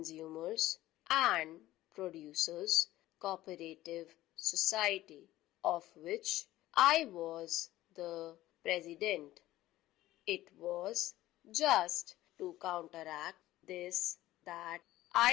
and Producers Cooperative Society, of which I was the president. It was just to counteract this that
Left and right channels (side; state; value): right; quieter; 15.7 dB